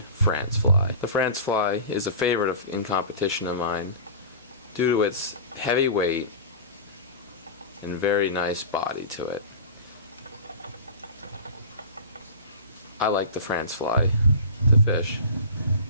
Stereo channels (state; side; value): inverted; both; correlation -0.33